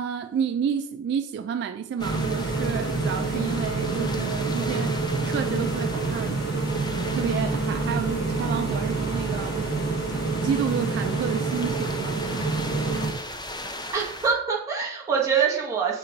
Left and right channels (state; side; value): quieter; left; 4.3 dB